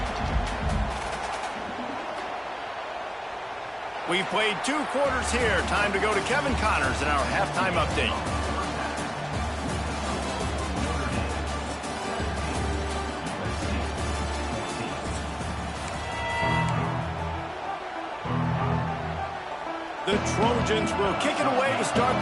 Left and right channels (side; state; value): both; identical; correlation 1.00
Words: We've played 2 quarters here. Time to go to Kevin Connors in our halftime update. The Trojans will kick it away to start